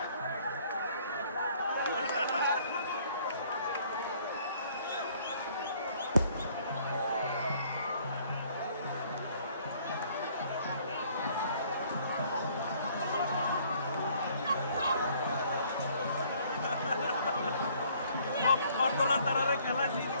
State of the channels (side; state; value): both; inverted; correlation -0.60